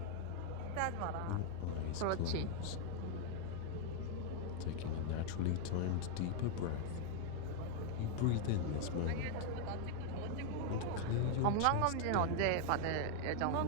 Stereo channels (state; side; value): different; both; correlation 0.00